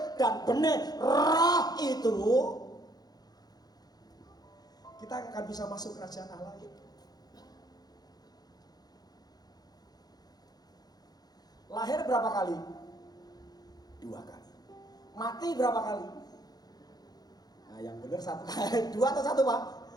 dan benih roh itu, kita akan bisa masuk kerajaan Allah itu. Lahir berapa kali? 2 kali. Mati berapa kali? Nah, yang benar 1 kali. 2 atau 1, Pak?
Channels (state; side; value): late; right; 0.19 ms